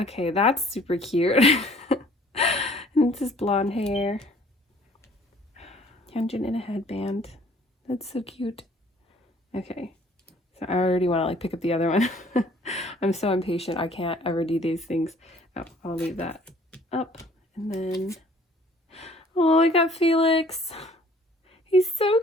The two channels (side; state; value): both; normal; correlation 0.55